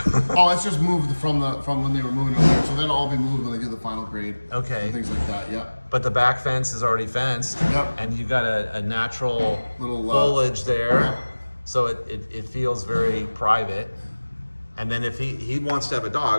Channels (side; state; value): both; inverted; correlation -1.00